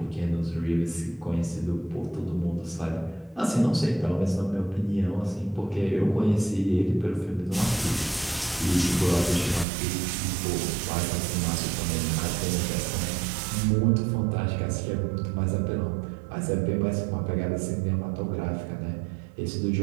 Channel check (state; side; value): drops out; left; at 9.7 s